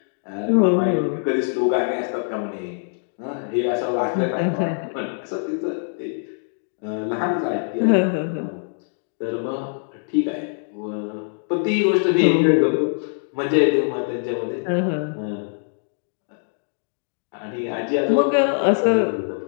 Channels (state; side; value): silent; right; digital silence